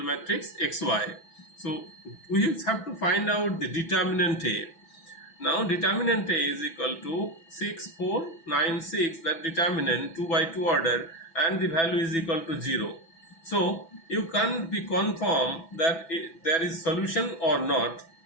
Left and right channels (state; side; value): late; right; 6.0 ms